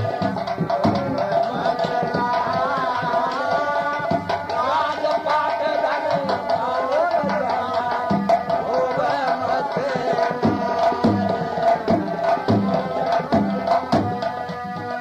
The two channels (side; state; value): both; identical; correlation 1.00